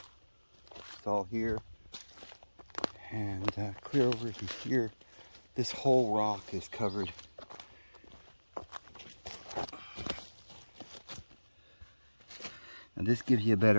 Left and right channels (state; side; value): inverted; both; correlation -1.00